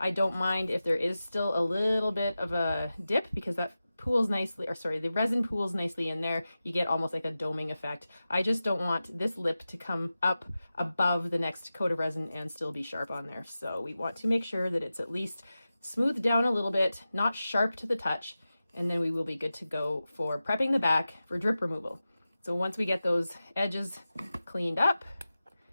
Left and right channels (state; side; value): inverted; both; correlation -0.94